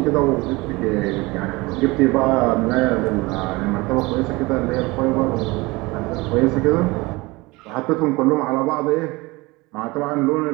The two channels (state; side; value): quieter; left; 23.0 dB